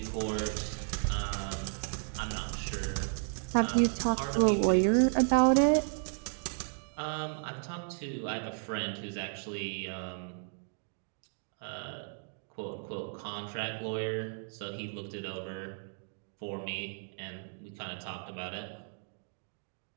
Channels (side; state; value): left; silent; 55 dB below the other